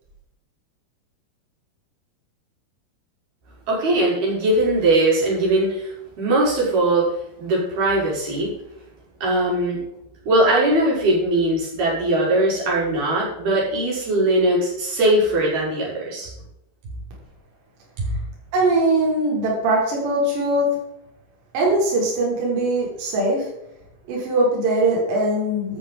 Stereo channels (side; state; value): left; late; 12 ms